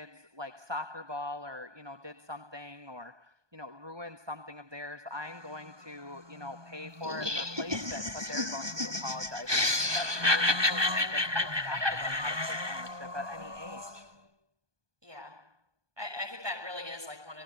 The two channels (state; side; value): late; left; 1.2 ms